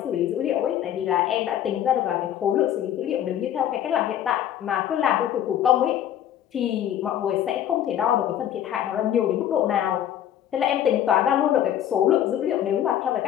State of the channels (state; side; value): quieter; right; 10.8 dB